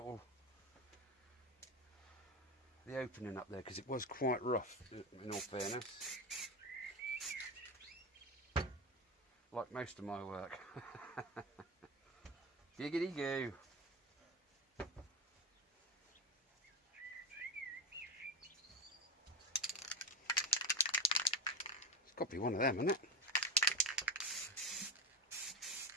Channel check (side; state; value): both; normal; correlation 0.19